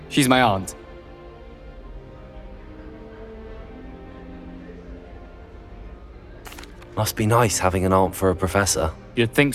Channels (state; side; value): identical; both; correlation 1.00